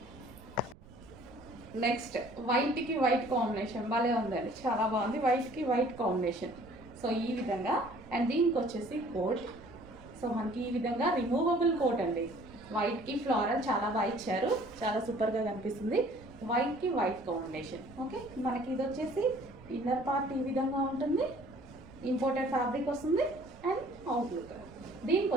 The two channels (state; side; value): noise; right; rumble, 20 dB below the sound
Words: నెక్స్ట్ వైట్కి వైట్ కాంబినేషన్ భలే ఉందండి, చాలా బాగుంది. వైట్కి వైట్ కాంబినేషన్, సో ఈ విధంగా. అండ్ దీనికి వచ్చేసి కోట్. సో మనకి ఈ విధంగా రిమూవబుల్ కోట్ అండి. వైట్కి ఫ్లోరల్ చాలా బాగా ఇచ్చారు, చాలా సూపర్గా కనిపిస్తుంది. వైట్కి వైట్ కాంబినేషన్. ఓకే, మనకి ఇది వచ్చేసి ఇన్నర్ పార్ట్ ఈ విధంగా ఉంటుంది, ఇంపోర్టెడ్ ఫ్యాబ్రిక్ వస్తుంది. అండ్ అవుట్లుక్, దీనికి